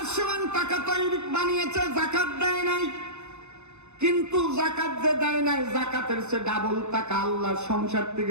সমান টাকা তৈরি বানিয়েছে, যাকাত দেয় নাই, কিন্তু যাকাত যে দেয় নাই, যাকাতের সে ডাবল টাকা আল্লাহ সংসার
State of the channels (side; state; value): left; late; 0.82 ms